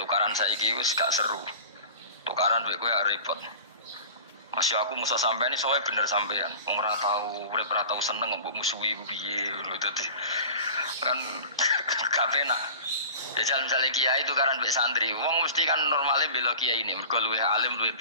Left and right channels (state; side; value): inverted; both; correlation -0.38